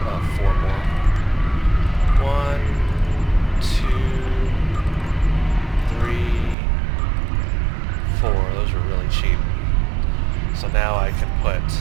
4 more. 1, 2, 3, 4. Those are really cheap. So now I can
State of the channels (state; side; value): drops out; left; at 6.6 s